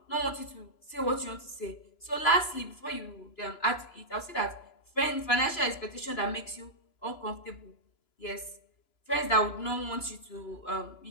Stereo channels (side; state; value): right; late; 3.0 ms